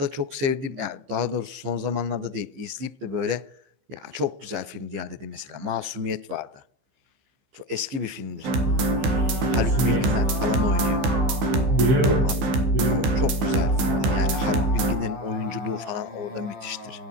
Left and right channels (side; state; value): left; late; 15 ms